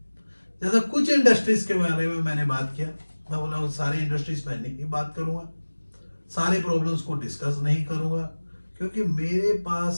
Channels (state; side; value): inverted; both; correlation -1.00